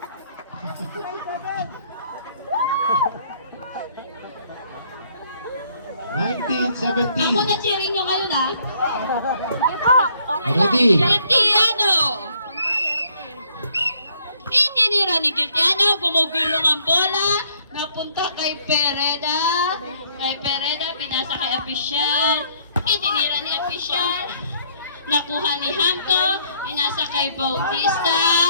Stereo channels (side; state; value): both; inverted; correlation -0.65